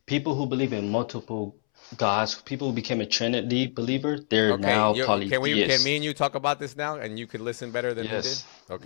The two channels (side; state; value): right; silent; 60 dB below the other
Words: believe in multiple gods, people who became a Trinity believer, they're now polytheists. can me and you talk about this now, and you could listen better than Yes. he did?